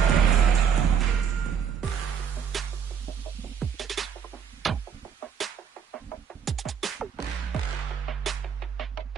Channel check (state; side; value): quieter; left; 7.4 dB